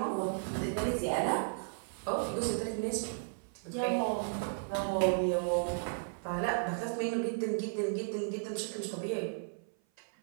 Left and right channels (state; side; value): silent; left; 55 dB below the other